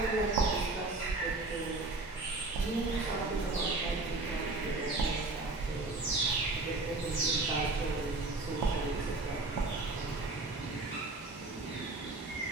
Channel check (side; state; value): left; quieter; 3.2 dB